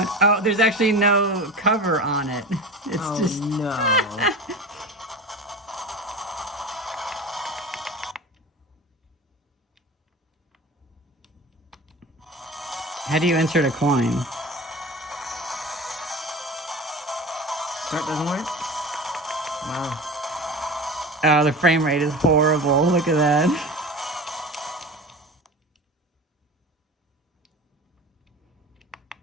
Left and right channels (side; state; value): both; normal; correlation 0.33